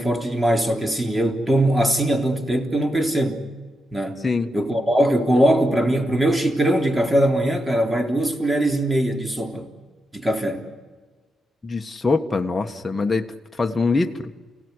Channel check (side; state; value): both; normal; correlation 0.86